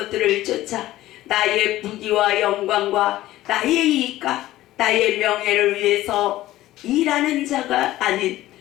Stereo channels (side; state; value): right; quieter; 15.5 dB